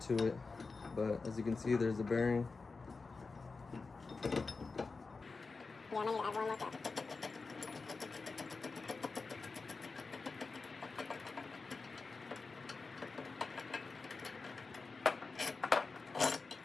to it. But as you can see, there's a bearing. Yeah, I might need to add one more cup.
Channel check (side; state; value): right; quieter; 4.2 dB